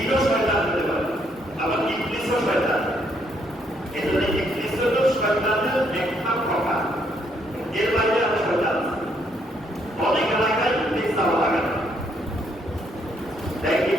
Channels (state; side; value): normal; both; correlation 0.72